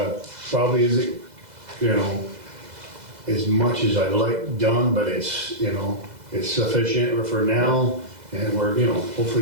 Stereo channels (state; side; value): late; left; 2.0 ms